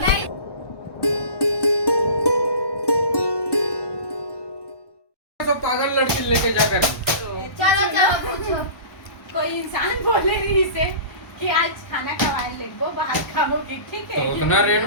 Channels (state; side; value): late; right; 1.1 ms